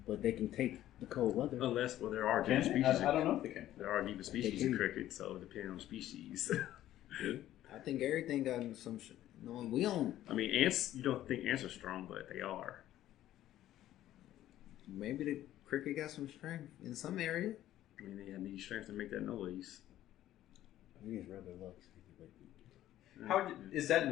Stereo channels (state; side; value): quieter; right; 13.3 dB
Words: but they can take the cold weather. Unless, well, there are Can different they? species. I don't know if they can. There are different species can. of cricket, so depending on the species. I think everything got some. No, we don't. I mean, ants. You don't think ants are strong, but they are. Maybe the cricket got some strength in some area. I mean, they need strength to make that noise. I think it's rather luck. How is that